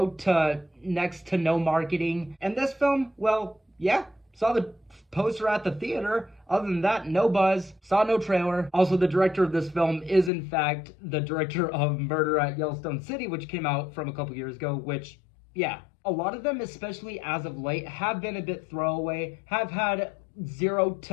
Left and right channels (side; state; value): right; drops out; at 10.3 s